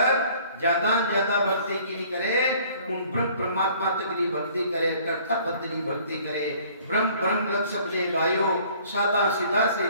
ज्यादा भक्ति की नहीं करे, उन ब्रह्म परमात्मा तक की भक्ति करे, कर्ता पद की भक्ति करे। ब्रह्म ब्रह्म लग सबने गायो, सादा सीधा से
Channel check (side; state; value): both; inverted; correlation -0.55